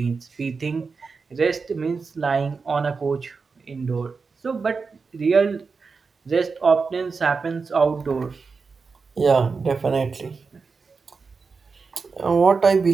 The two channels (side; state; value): left; quieter; 4.8 dB